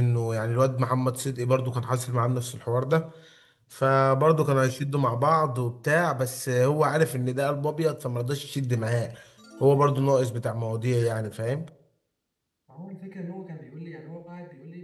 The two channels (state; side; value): identical; both; correlation 1.00